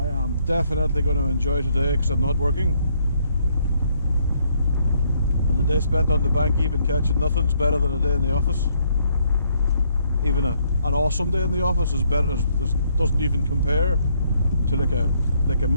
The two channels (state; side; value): inverted; both; correlation -0.70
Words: am definitely going to enjoy today because I'm not working, and the day spent on the bank even catching nothing's better than a day in the office. Even an awesome day in the office is better, doesn't even compare to like a